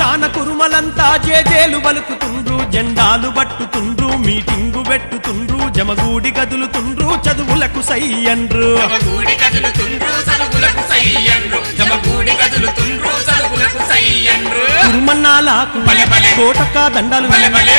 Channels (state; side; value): inverted; both; correlation -1.00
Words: కురుమలంతా జేజేలు పలుకుతుండ్రు జెండాలు పట్టుతుండ్రు మీటింగు పెట్టుతుండ్రు జమగూడి కదులుతుండ్రు చదువులకు సై అండ్రు జమగూడి కదులుతుండ్రు చదువులకు సై అండ్రు జమగూడి కదులుతుండ్రు చదువులకు సై అండ్రు కురుమన్నాలకు కోటొక్క దండలు